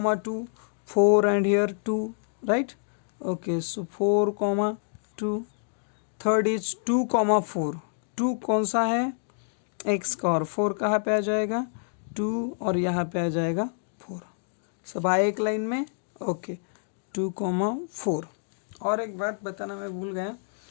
4 and here 2, right, okay. So 4,2, third is 2,4, 2 कौन सा है, x का, और 4 कहाँ पे आ जाएगा, 2, और यहाँ पे आ जाएगा 4, सब आए एक लाइन में, ओके। 2,4। और एक बात बताना मैं भूल गया,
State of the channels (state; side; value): silent; right; digital silence